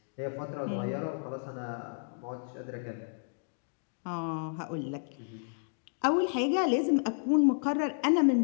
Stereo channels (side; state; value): right; silent; digital silence